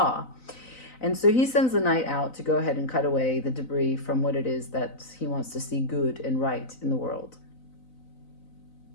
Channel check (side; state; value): right; late; 4.0 ms